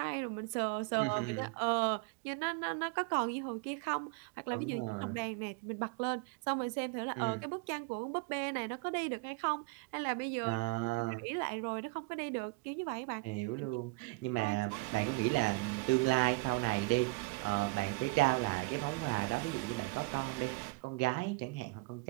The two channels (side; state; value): left; quieter; 26.8 dB